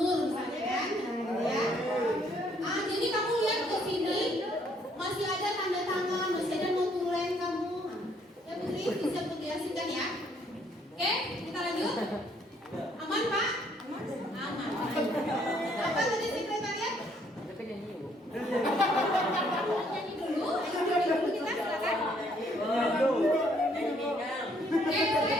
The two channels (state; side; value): normal; both; correlation 0.66